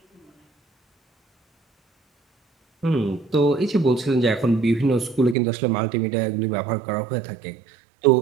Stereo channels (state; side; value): drops out; left; at 5.4 s